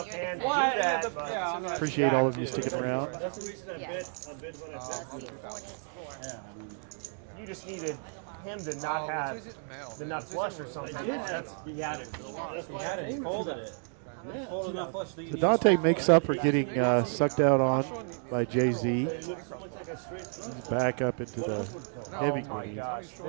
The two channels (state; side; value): silent; left; 55 dB below the other